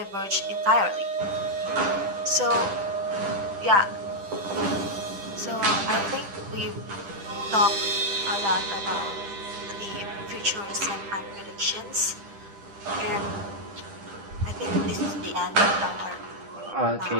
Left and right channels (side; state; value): left; late; 10 ms